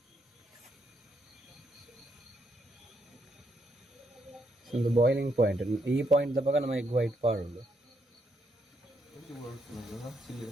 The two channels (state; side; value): normal; both; correlation 0.76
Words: ಒಂದು ಬಾಯ್ಲಿಂಗ್ ಪಾಯಿಂಟ್, ಈ ಪಾಯಿಂಟ್ ದಪ್ಪಾಗ ನಮ್ಮ ಎಗ್ ವೈಟ್ ಪಾಡೋದು.